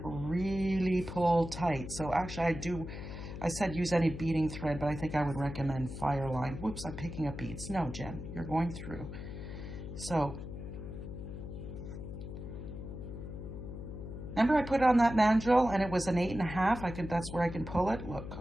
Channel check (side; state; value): left; noise; hum, 9 dB below the sound